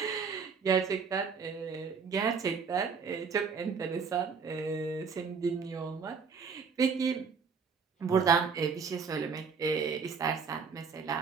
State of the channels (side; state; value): left; quieter; 5.7 dB